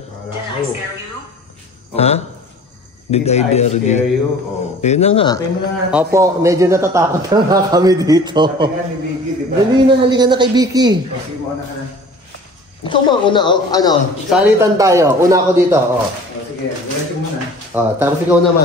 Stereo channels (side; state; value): both; normal; correlation 0.45